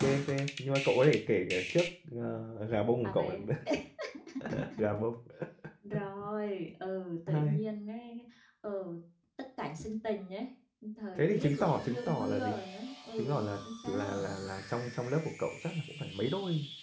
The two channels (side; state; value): both; identical; correlation 1.00